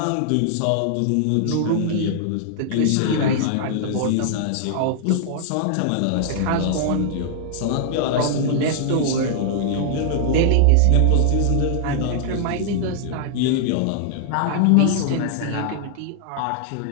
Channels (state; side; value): different; both; correlation -0.01